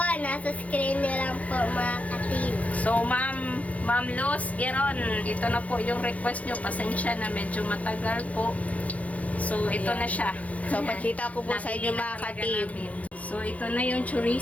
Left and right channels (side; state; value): right; late; 0.068 ms